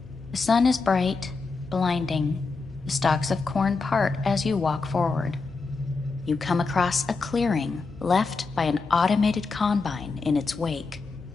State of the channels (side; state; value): right; quieter; 4.2 dB